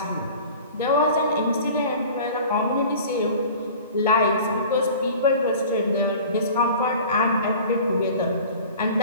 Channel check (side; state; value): both; inverted; correlation -0.42